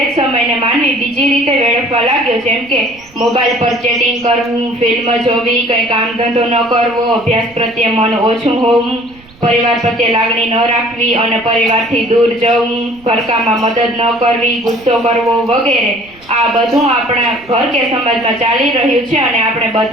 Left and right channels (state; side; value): noise; right; rumble, 26 dB below the sound